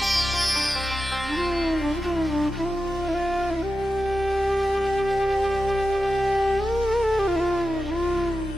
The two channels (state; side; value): normal; both; correlation 0.91